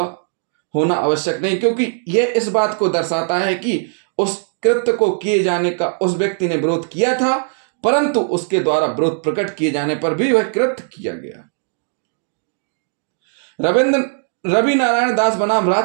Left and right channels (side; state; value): left; silent; digital silence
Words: होना आवश्यक नहीं, क्योंकि यह इस बात को दर्शाता है कि उस कृत्य को किए जाने का उस व्यक्ति ने विरोध किया था, परंतु उसके द्वारा विरोध प्रकट किए जाने पर भी वह कृत्य किया गया। रवि नारायण दास बनाम